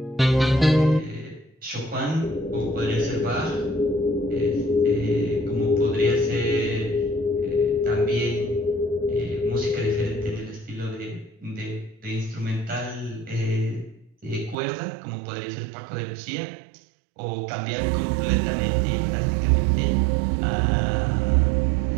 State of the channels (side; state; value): left; drops out; at 14.6 s